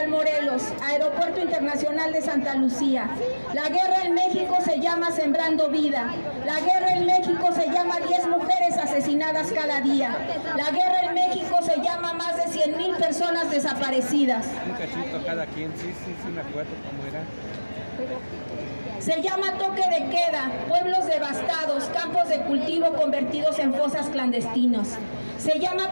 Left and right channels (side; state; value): both; inverted; correlation -1.00